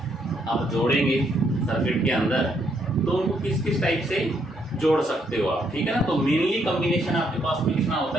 आप जोड़ेंगे सर्किट के अंदर, तो उनको किस किस टाइप से जोड़ सकते हो आप, ठीक है ना। तो मेनली कॉम्बिनेशन आपके पास में कितना होता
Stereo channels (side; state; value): both; normal; correlation 0.73